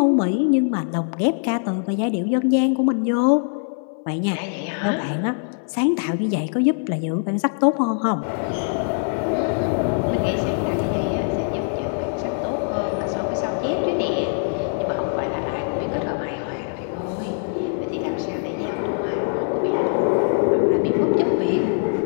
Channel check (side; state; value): right; silent; 62 dB below the other